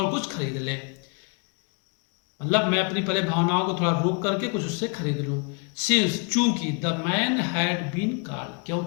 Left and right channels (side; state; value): right; quieter; 34.2 dB